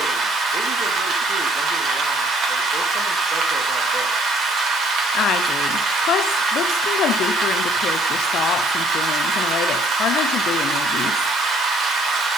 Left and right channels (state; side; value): normal; both; correlation 0.62